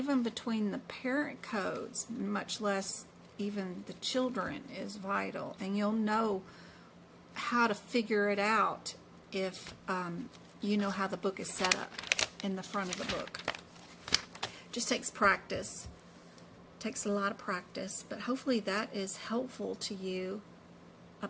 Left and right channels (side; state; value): both; identical; correlation 1.00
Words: between the parent codes, much less even the children, is vital. And you'll know how to figure it out if you know how the book is set up in the front of the book. Just takes practice. Takes a lot of practice, but hopefully that is helpful to you